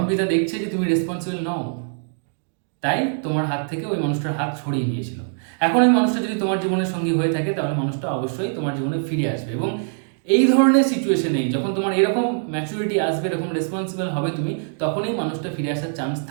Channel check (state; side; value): silent; left; digital silence